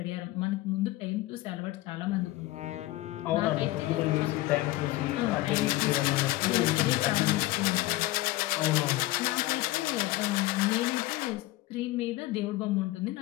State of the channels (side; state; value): right; quieter; 18.1 dB